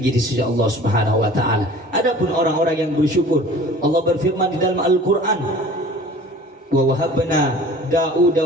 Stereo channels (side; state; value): both; normal; correlation 0.45